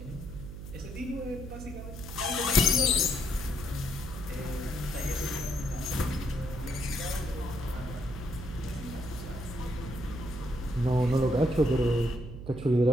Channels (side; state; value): right; noise; hum, 10 dB below the sound